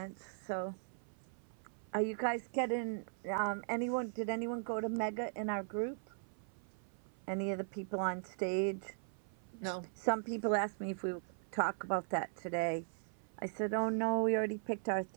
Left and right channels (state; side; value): silent; left; 52 dB below the other